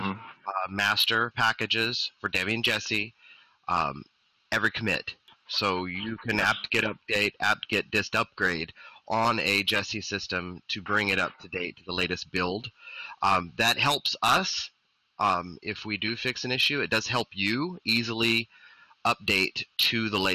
master packages for Debbie and Jesse every commit. So you can apt-get update, apt-get dist upgrade on a Jesse system to bring it up to date to the latest build. That helps us if we do fix an issue. It does help you easily update to the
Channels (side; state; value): both; identical; correlation 1.00